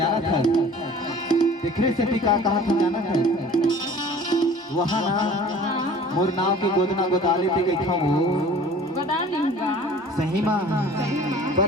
था। देखरे से भी का था जाना था वहाँ ना मोर नाव के गोदना गोदाले ते गई था वो सही माँ पर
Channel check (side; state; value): both; normal; correlation 0.46